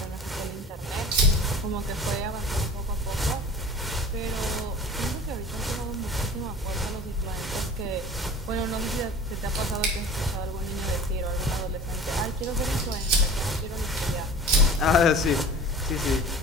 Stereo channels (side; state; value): both; normal; correlation 0.40